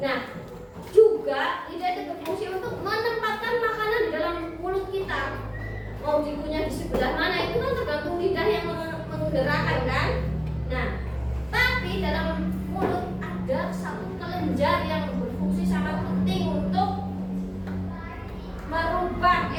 Nah, juga lidah itu berfungsi untuk menempatkan makanan di dalam mulut kita. Mau dikunyah di sebelah mana itu kan tergantung lidah yang menggerakkan kan. Nah, tapi dalam mulut ada satu kelenjar yang berfungsi sangat penting untuk merubah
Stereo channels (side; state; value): both; identical; correlation 1.00